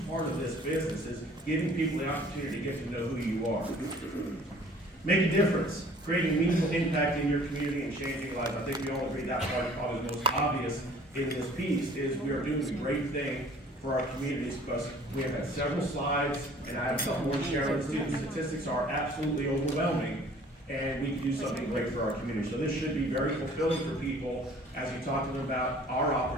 part of this business, is giving people the opportunity to get to know who you are. Make a difference, creating meaningful impact in your community and changing lives. I think we all agree that part is probably the most obvious in this piece, is we are doing a great thing for our communities, because we have had several slides, and I have some more sharing. Student statistics are absolutely overwhelming, and we can do something great for our community. So this should be very fulfilling for people as you talk to them about our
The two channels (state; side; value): normal; both; correlation 0.52